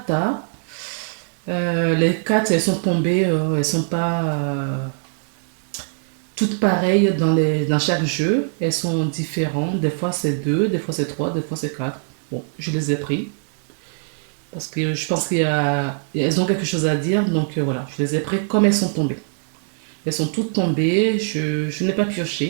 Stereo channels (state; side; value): silent; left; digital silence